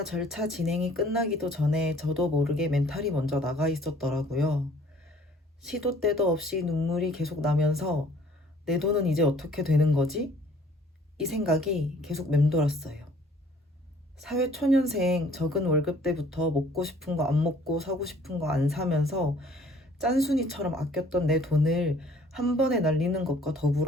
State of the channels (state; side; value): normal; both; correlation 0.56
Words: 절차 진행이 끝나기도 전에 저도 모르게 멘탈이 먼저 나가 있었더라고요. 시도 때도 없이 눈물이 계속 나면서 내 돈은 이제 어떻게 되는 거지? 이 생각이 계속 맴돌았어요. 사회초년생 적은 월급 때부터 먹고 싶은 거 안 먹고 사고 싶은 거 안 사면서 짠순이처럼 아꼈던 내 돈을 한 번에 날리는 것과